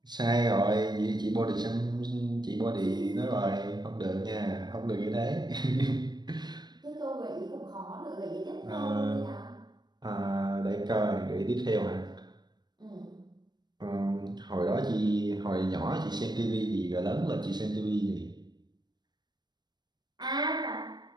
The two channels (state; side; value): late; left; 0.21 ms